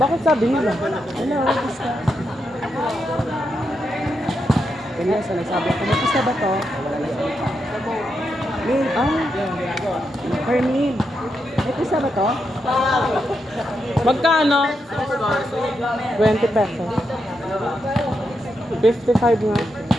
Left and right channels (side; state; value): both; normal; correlation 0.83